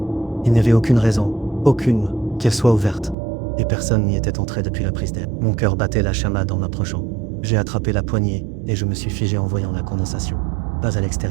Il n'y avait aucune raison, aucune, qu'elle soit ouverte. Et personne n'y était entré depuis la prise d'air. Mon cœur battait la chamade en approchant. J'ai attrapé la poignée et je me suis figé en voyant la condensation. Pas à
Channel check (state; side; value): drops out; left; at 3.2 s